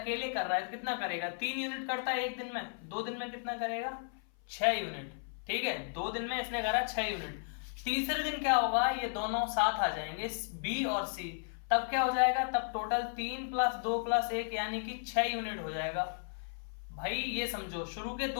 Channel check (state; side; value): silent; right; 55 dB below the other